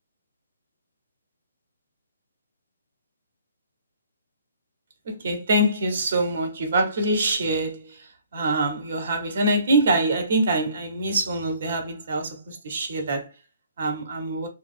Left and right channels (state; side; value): inverted; both; correlation -0.58